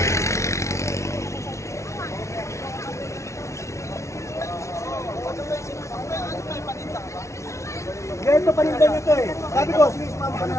Ganito panindan nyo ito eh. Sabi ko, sige, sumama ka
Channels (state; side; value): late; right; 0.14 ms